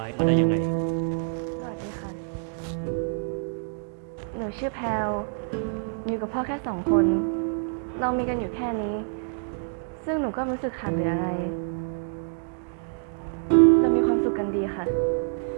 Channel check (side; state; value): left; silent; digital silence